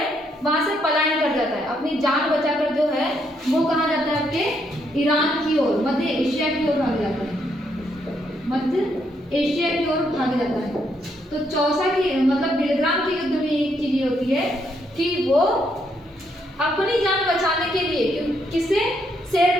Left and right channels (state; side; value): normal; both; correlation 0.75